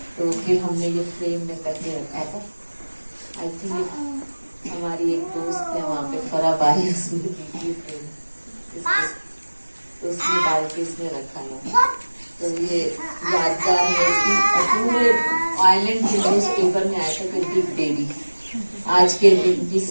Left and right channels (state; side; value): inverted; both; correlation -1.00